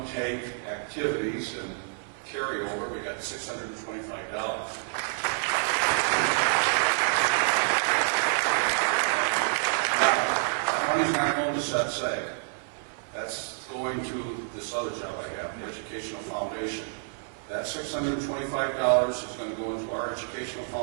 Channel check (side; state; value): left; silent; 59 dB below the other